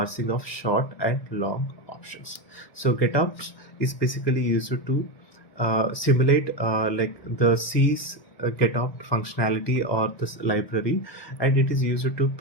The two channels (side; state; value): right; late; 1.6 ms